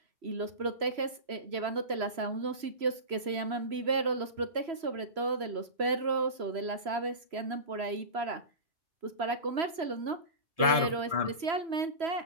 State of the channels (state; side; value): late; left; 3.0 ms